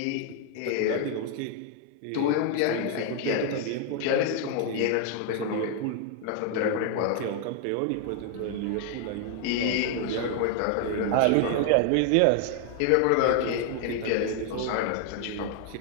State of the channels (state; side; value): different; both; correlation 0.00